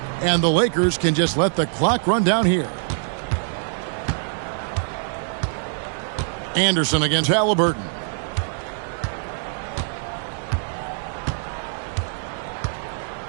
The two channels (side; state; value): left; silent; 63 dB below the other